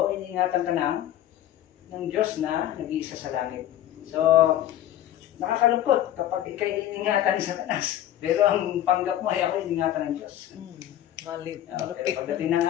iniingatan ka ng Diyos na nag-iisa sa langit. So, nakakalungkot kapag ikay iniingatan ni Satanas. Pero ang panggap mo ay ako iniingatan ng Diyos. Malit. Pero pagdating ng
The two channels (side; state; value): right; quieter; 12.4 dB